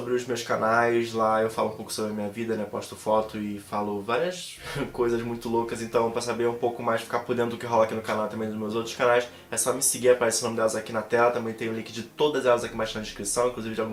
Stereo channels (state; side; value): identical; both; correlation 1.00